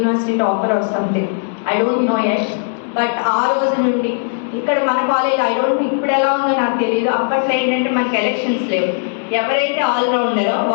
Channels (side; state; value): right; silent; digital silence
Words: topper or something, I don't know yet. But ఆ రోజు నుండి ఇక్కడ మన కాలేజ్, ఐ డోంట్ నో ఇప్పుడు ఎలా ఉందో నాకు తెలియదు, అప్పట్లో ఏంటంటే మనకి ఎలక్షన్స్ లేవు, ఎవరైతే ఆల్రౌండరో